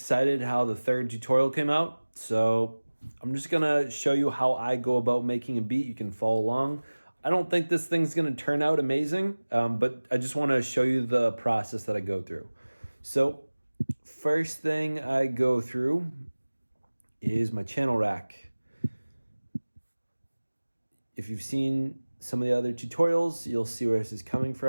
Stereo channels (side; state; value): both; inverted; correlation -1.00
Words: how the third tutorial came out, so I'm just gonna show you how I go about making a beat. You can follow along. I don't think this thing's gonna turn out amazing, but I just wanna show you the process that I go through. So first thing I go through is my channel rack. If you've seen some of the other tutorials, you'll see where this is coming